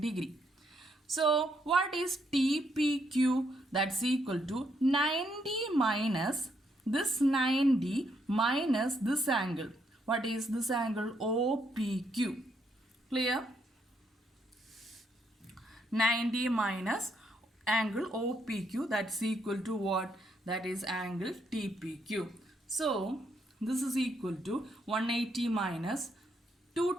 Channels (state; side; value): normal; both; correlation 0.75